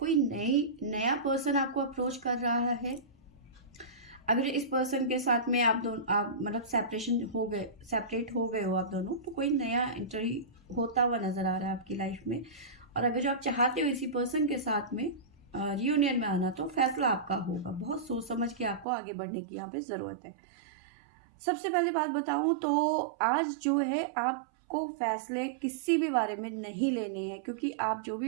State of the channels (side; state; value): left; drops out; at 18.9 s